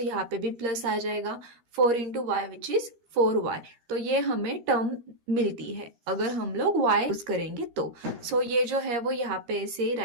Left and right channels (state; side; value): late; left; 13 ms